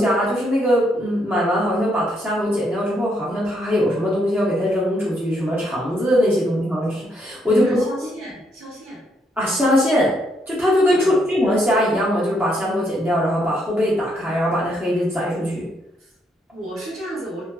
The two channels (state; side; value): normal; both; correlation 0.74